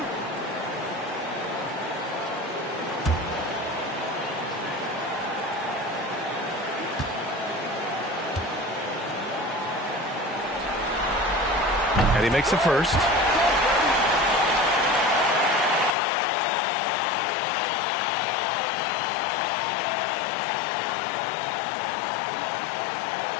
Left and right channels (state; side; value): drops out; right; at 16.0 s